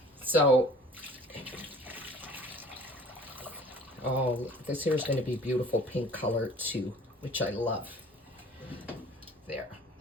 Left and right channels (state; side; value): normal; both; correlation 0.49